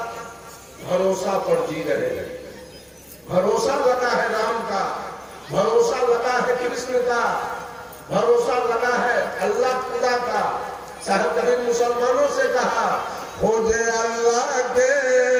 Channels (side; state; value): both; identical; correlation 1.00